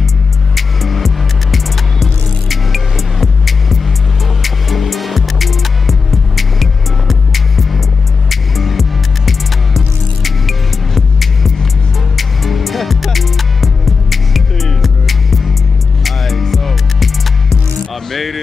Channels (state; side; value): quieter; right; 4.9 dB